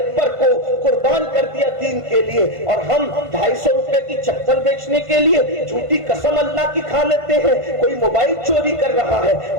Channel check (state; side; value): late; left; 1.5 ms